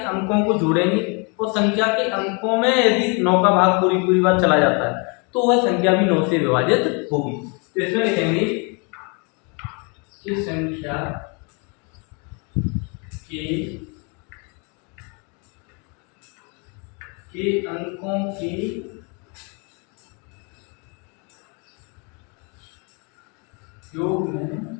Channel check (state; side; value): quieter; right; 33.6 dB